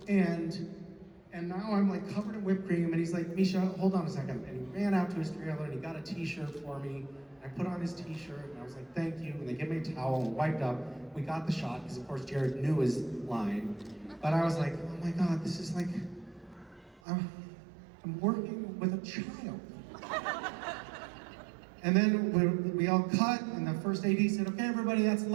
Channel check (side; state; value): left; drops out; at 17.0 s